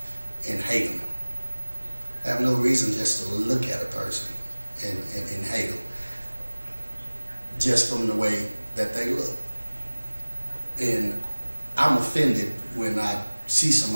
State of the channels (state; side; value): inverted; both; correlation -1.00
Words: and hate them. I have no reason just to look at a person and hate them, just from the way that they look. And I'm offended when I see